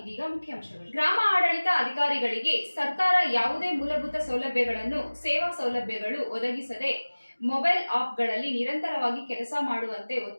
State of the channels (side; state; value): both; inverted; correlation -1.00